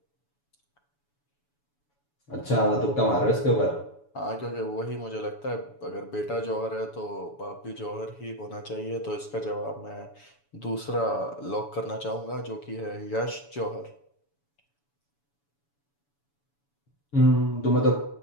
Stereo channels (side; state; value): right; late; 7.0 ms